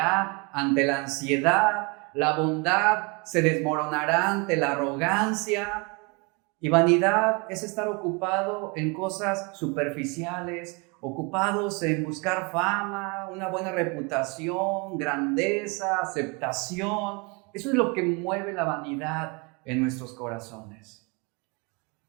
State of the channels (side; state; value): left; quieter; 29.5 dB